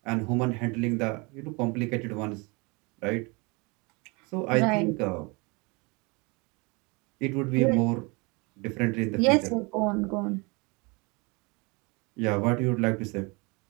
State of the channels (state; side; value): quieter; left; 28.4 dB